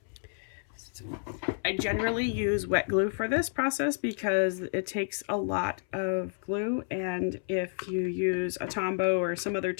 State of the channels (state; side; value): silent; right; 58 dB below the other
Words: So I generally use wet glue for this process because it takes a lot of glue, and if you use a Tombow or some other